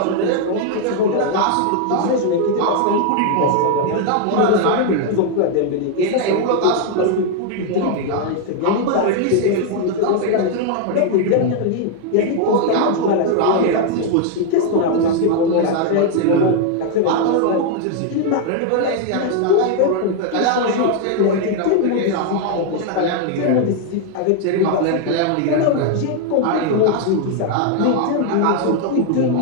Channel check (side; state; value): both; different; correlation 0.00